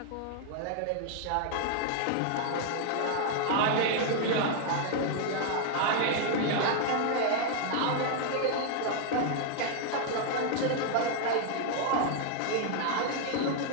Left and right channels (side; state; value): both; different; correlation 0.00